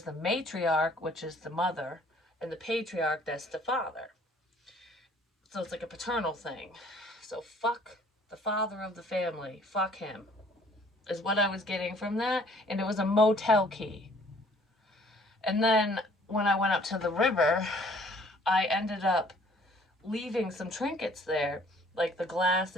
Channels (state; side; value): normal; both; correlation 0.57